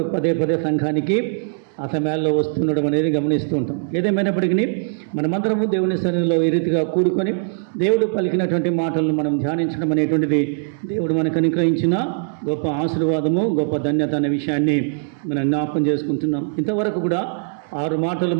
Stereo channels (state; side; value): silent; left; digital silence